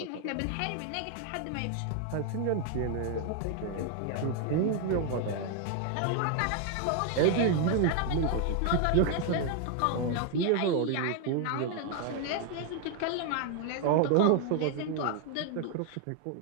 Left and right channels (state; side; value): different; both; correlation 0.01